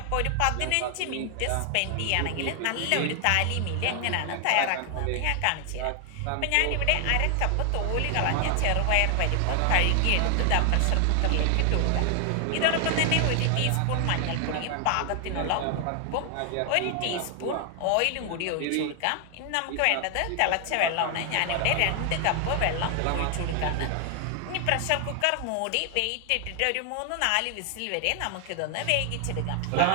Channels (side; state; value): both; different; correlation 0.00